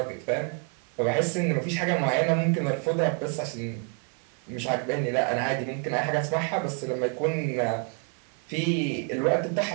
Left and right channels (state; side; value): quieter; left; 38.3 dB